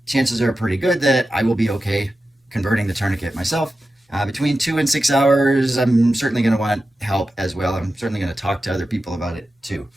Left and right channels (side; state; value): both; normal; correlation 0.92